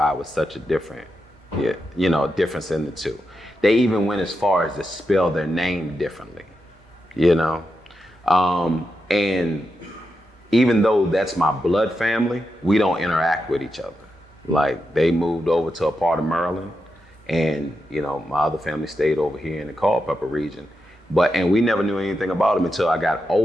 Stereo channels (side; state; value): both; normal; correlation 0.87